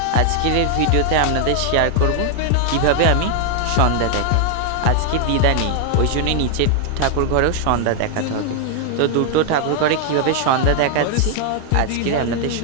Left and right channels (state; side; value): different; both; correlation 0.00